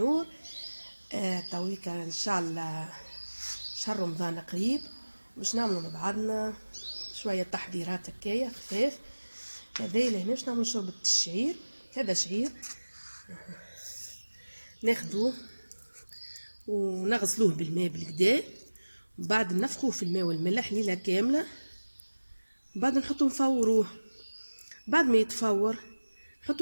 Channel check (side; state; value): both; inverted; correlation -1.00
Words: تويكا ان شاء الله شهر رمضان قريب، باش نعملوا مع بعضنا شويه تحضيرات هكايا خفاف. هذا اللي هنا باش نعملوا شوربه الشعير. هذا شعير ناخذوه ونغسلوه بالماء بالكدا، وبعد نفخوه في الماء والملح ليله كامله، بعد نحطو نفوروه. بعد ما يتفور